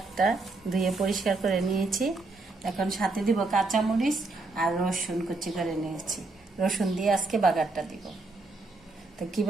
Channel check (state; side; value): quieter; left; 3.4 dB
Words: ধুয়ে পরিষ্কার করে নিয়েছি। এখন সাথে দিব কাঁচামরিচ আর রসুন কুচি করে নিয়েছি। রসুন দিয়ে আজকে বাগারটা দিব। তো